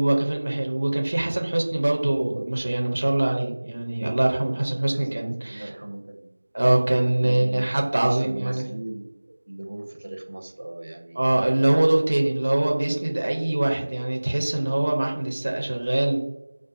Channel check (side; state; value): both; inverted; correlation -1.00